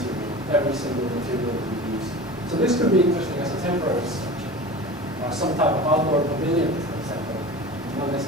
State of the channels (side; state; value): both; normal; correlation 0.35